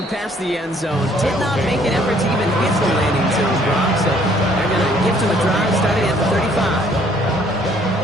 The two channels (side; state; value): both; normal; correlation 0.62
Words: past the end zone. Did not make an effort to even hit the landing zone, Brock. So they're going to give to the drive starting at the 35.